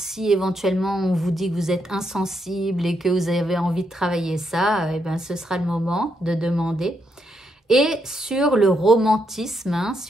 éventuellement on vous dit que vous êtes insensible et que vous avez envie de travailler ça, eh ben, ce sera le moment de demander. Et sur le romantisme, hein,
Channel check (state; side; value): normal; both; correlation 0.79